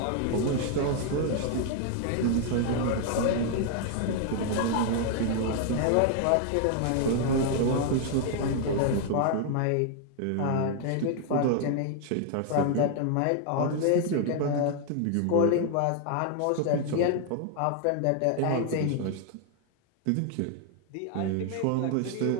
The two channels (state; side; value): different; both; correlation 0.00